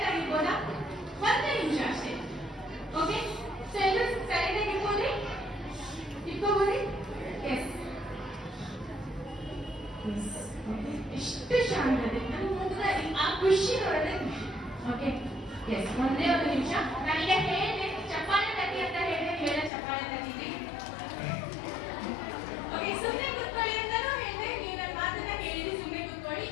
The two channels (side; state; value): right; drops out; at 19.7 s